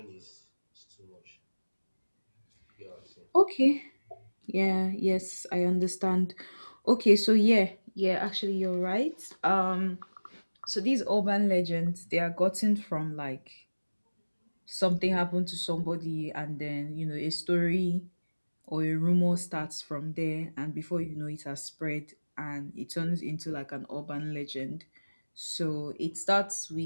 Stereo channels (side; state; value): both; inverted; correlation -1.00